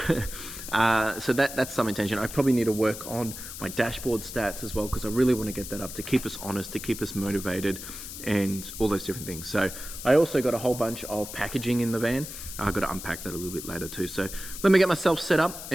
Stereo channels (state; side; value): noise; left; hiss, 10 dB below the sound